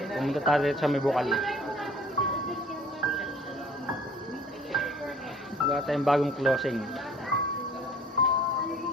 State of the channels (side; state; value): both; normal; correlation 0.51